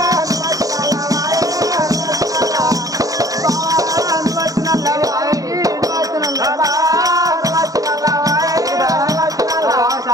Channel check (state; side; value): late; left; 0.17 ms